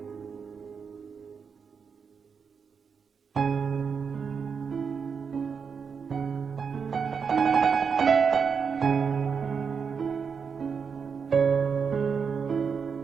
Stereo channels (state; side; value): quieter; left; 6.1 dB